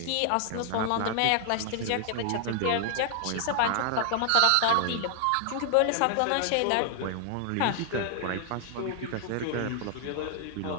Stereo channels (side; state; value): both; different; correlation 0.00